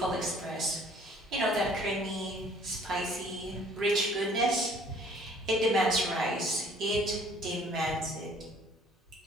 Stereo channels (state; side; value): normal; both; correlation 0.57